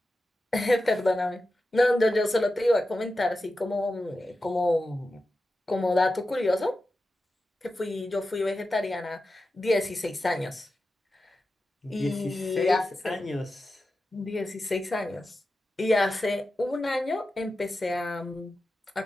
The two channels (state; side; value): normal; both; correlation 0.92